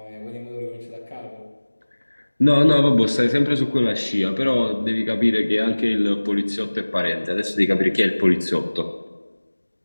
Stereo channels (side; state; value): both; inverted; correlation -1.00